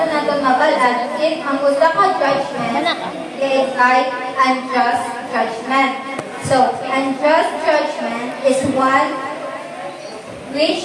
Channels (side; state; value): both; identical; correlation 1.00